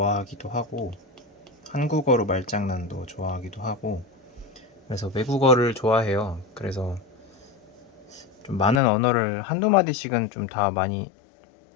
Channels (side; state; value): right; drops out; at 8.8 s